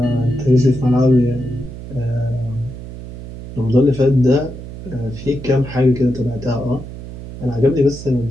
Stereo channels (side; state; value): right; noise; hum, 12 dB below the sound